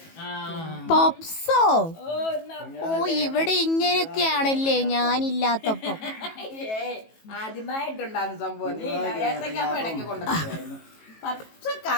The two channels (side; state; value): right; late; 18 ms